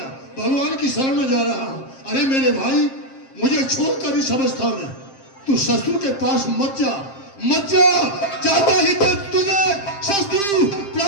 भगवान की शरण में जा रहा हूँ। अरे मेरे भाई, मुझे छोड़कर इस अवस्था में तू शत्रु के पास मत जा, मत जा। जाता ही तो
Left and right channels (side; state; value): right; late; 7.5 ms